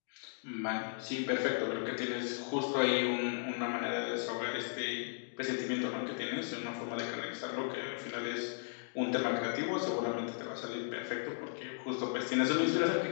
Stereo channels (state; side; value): silent; right; digital silence